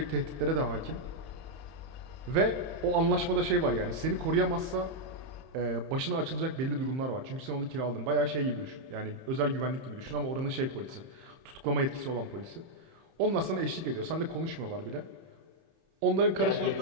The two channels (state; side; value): late; left; 31 ms